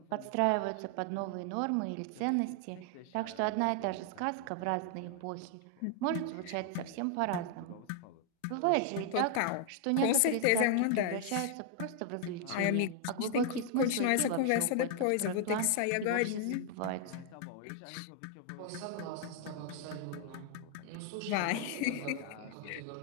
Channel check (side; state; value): both; different; correlation 0.00